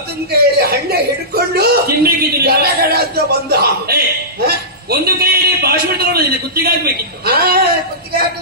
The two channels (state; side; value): normal; both; correlation -0.18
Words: ಕೈಯಲ್ಲಿ ಹಣ್ಣೆ ಹಿಡ್ಕೊಂಡು ಗಡಗಡ ಅಂತ ಬಂದ. ಒಂದು ಕೈಯಲ್ಲಿ ಭಾಷಣ ತಗೊಂಡಿದ್ದೆ, ಕುತ್ತಿಗೆ ಹಾಕ್ಬೇಕಿತ್ತು. ಕುತ್ತಿಗೆ